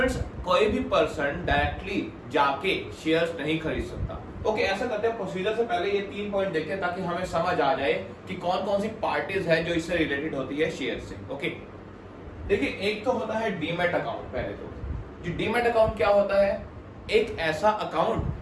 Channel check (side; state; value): both; identical; correlation 1.00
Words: कोई भी पर्सन डायरेक्टली जाके शेयर्स नहीं खरीद सकता। ओके, ऐसा करते हैं, प्रोसीजर से पहले ये 3 पॉइंट देखते हैं ताकि हमें समझ आ जाए कि कौन कौन सी पार्टीज है जो इससे रिलेटेड होती है शेयर से। ओके, देखिए एक तो होता है डीमैट अकाउंट। पहले तो जी डीमैट अकाउंट क्या होता है, एक ऐसा